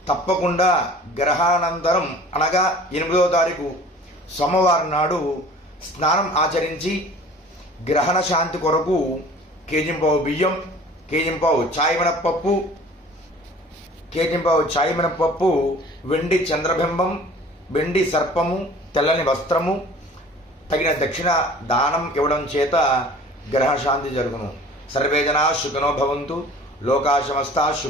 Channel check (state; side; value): normal; both; correlation 0.46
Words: తప్పకుండా గ్రహానంతరం అనగా 8వ తారీఖు సోమవారం నాడు స్నానం ఆచరించి గ్రహణ శాంతి కొరకు కేజింపావు బియ్యం, కేజింపావు చాయ్ మినపప్పు, వెండి చంద్రబింబం, వెండి సర్పము, తెల్లని వస్త్రము, తగిన దక్షిణ దానం ఇవ్వడం చేత గ్రహశాంతి జరుగును. సర్వే జనా సుఖినో భవంతు, లోకా సమస్తా